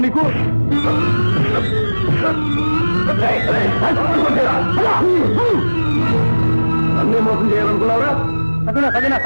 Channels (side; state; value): both; inverted; correlation -1.00